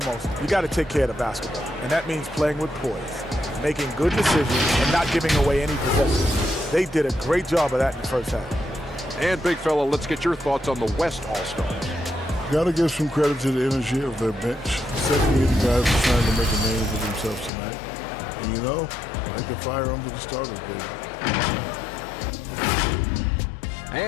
you got to take care of the basketball, and that means playing with poise, making good decisions, and not giving away any possessions. They did a great job of that in the first half. And, big fella, let's get your thoughts on the West All-Stars. Got to give some credit to the energy of their bench. 78 guys are trying to make a name for themselves tonight. And you know, like the fire under the starters, baby.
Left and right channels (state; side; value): drops out; right; at 17.5 s